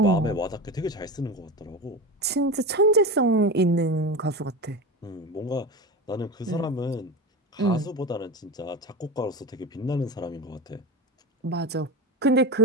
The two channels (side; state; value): both; normal; correlation 0.24